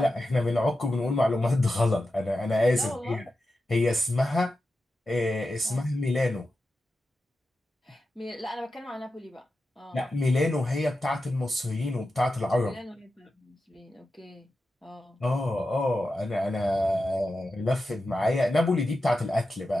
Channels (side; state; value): both; normal; correlation 0.91